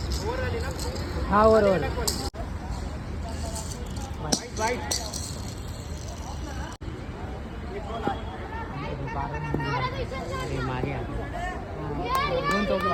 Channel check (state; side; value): identical; both; correlation 1.00